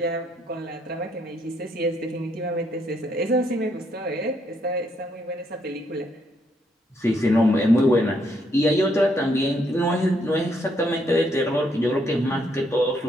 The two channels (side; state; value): both; normal; correlation 0.73